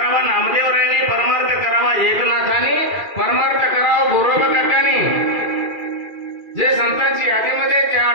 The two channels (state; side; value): late; left; 2.4 ms